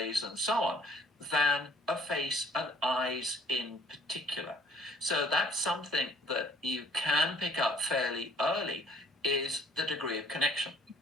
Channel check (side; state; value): both; normal; correlation 0.56